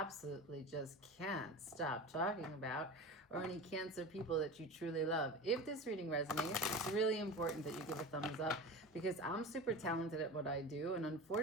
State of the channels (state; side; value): normal; both; correlation 0.30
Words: just can't stop talking about, or any Cancer people that you truly love. If this reading resonates, it's really important that you give a thumbs up, because I'm super talented at what I do, and